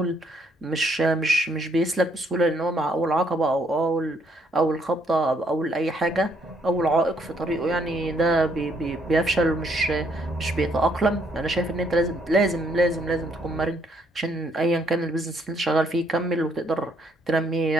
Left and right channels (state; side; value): normal; both; correlation 0.70